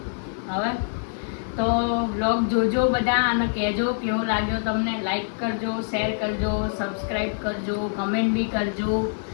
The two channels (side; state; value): right; silent; digital silence